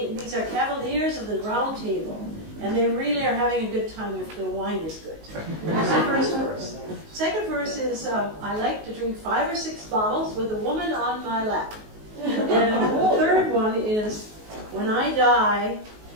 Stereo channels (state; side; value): late; left; 19 ms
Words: these are cavaliers of the round table, and they really are having a good time if the wine is good. That's the first verse. Second verse is, I like to drink 5 or 6 bottles with a woman on my lap. And the third one is, when I die,